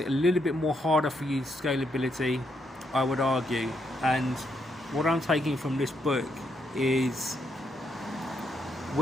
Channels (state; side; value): normal; both; correlation 0.77